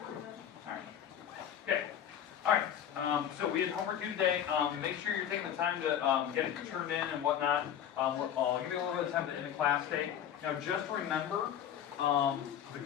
All right. Okay. All right. So we had homework due today. Make sure you're taking the time to get it turned in and whatnot. I'll give you a little bit of time to end the class day. Now, just remember, the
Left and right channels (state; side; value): quieter; right; 9.7 dB